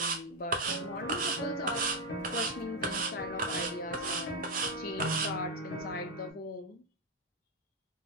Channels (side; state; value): both; normal; correlation 0.02